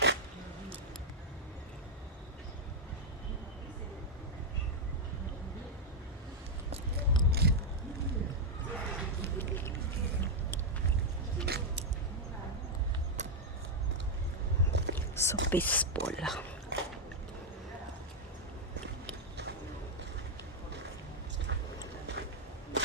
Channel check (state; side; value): normal; both; correlation -0.01